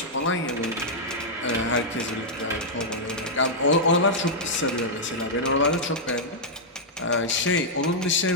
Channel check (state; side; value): normal; both; correlation -0.07